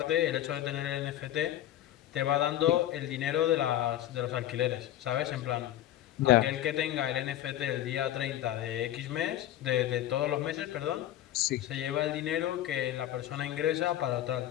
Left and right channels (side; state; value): right; quieter; 12.8 dB